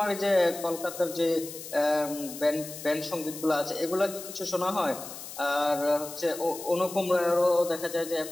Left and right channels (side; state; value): left; noise; hiss, 12 dB below the sound